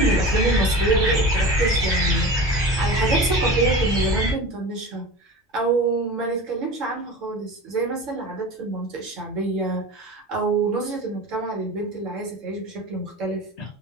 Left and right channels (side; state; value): both; normal; correlation 0.33